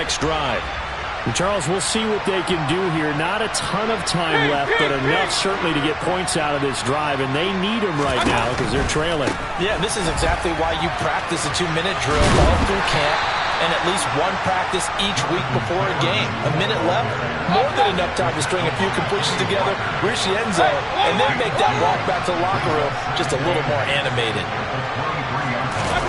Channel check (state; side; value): identical; both; correlation 1.00